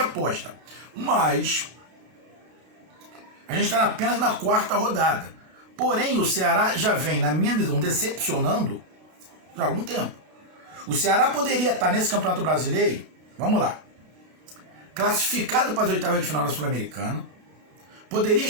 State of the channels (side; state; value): left; late; 32 ms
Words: mas a gente está apenas na quarta rodada. Porém, o Ceará já vem, na minha visão, decepcionando já há algum tempo. O Ceará poderia estar nesse Campeonato Brasileiro, vamos lá, classificado para as oitavas de final da Sul-Americana, poderia